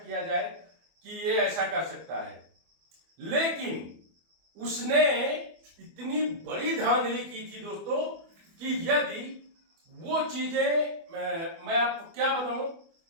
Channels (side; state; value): left; late; 24 ms